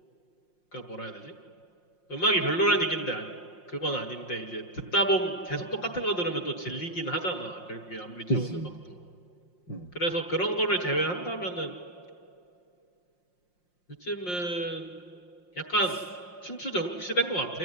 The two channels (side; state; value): right; late; 5.6 ms